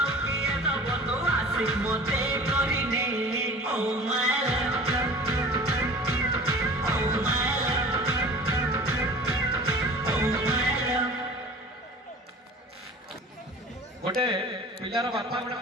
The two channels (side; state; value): both; normal; correlation 0.41